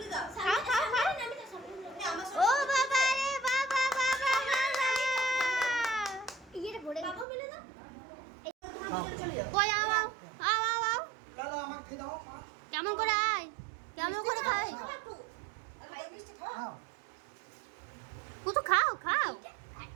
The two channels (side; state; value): left; drops out; at 7.2 s